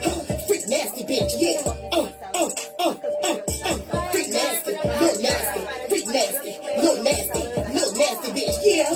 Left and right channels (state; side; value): identical; both; correlation 1.00